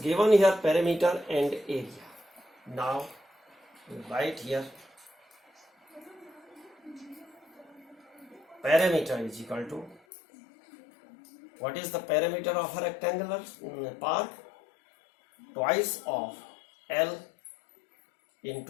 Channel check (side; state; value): right; drops out; at 10.0 s